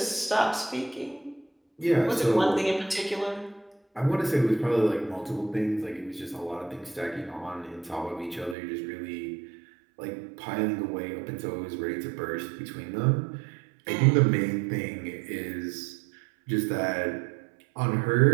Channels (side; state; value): left; drops out; at 8.6 s